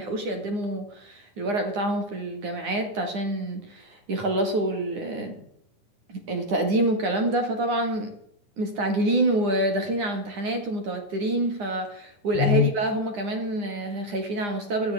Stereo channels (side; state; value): left; late; 9.8 ms